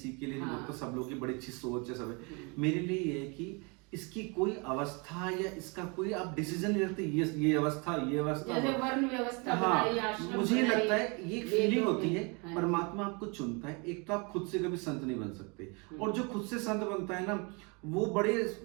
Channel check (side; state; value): left; quieter; 31.2 dB